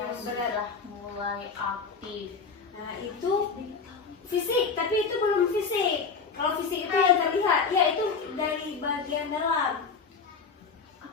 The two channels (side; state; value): right; quieter; 5.2 dB